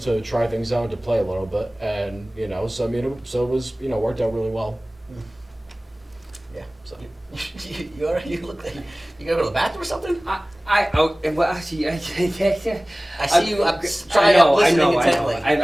to try things out and to play a little bit, and so it was worked out really well. Yeah. So. You look like you gotta go to the bathroom or something? I see you. I'm trying to listen intently.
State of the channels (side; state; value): both; normal; correlation 0.98